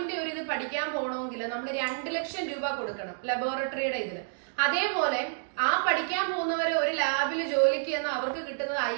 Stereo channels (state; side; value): silent; left; digital silence